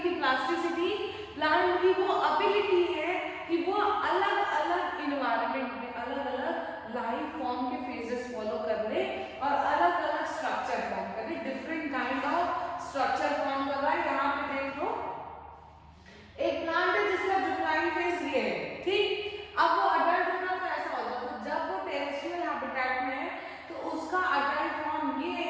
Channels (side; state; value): both; identical; correlation 1.00